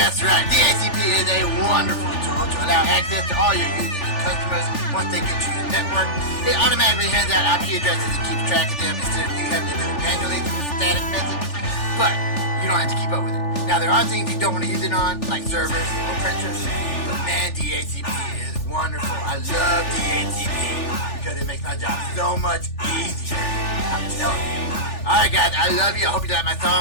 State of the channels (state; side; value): late; right; 3.4 ms